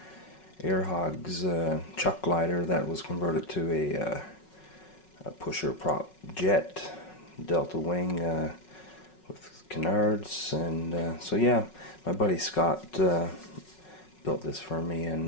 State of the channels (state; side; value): late; right; 5.4 ms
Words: AirHogs chuck glider that was converted to a pusher prop jet delta wing with canards, and so yeah, my buddy Scott built this for me,